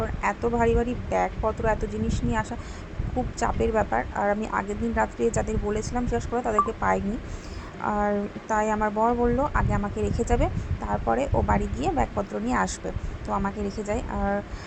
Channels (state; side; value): identical; both; correlation 1.00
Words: এত ভারী ভারী ব্যাগপত্র, এত জিনিস নিয়ে আসা খুব চাপের ব্যাপার। আর আমি আগের দিন রাত্রে যাদের বলেছিলাম শেষ করে তাদেরকে পাইনি। আর তাই আমার বর বলল আগে আমাকে রেখে যাবে, তারপরে ও বাড়ি গিয়ে ব্যাগপত্র নিয়ে আসবে। তো আমাকে রেখে যায়। আর